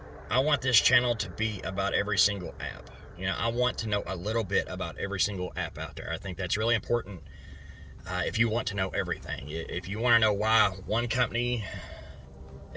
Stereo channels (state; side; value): identical; both; correlation 1.00